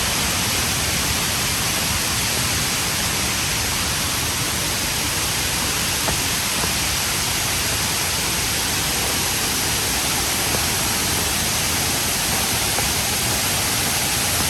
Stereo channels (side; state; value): both; identical; correlation 1.00